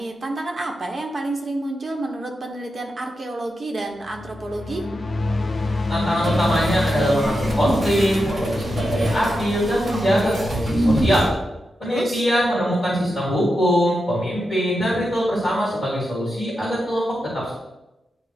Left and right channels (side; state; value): both; normal; correlation 0.88